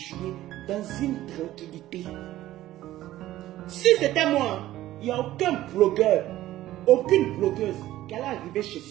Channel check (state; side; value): quieter; left; 14.7 dB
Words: dans une tranquillité. Si c'était moi, il n'y a aucun blogueur, aucune blogueuse qui allait arriver chez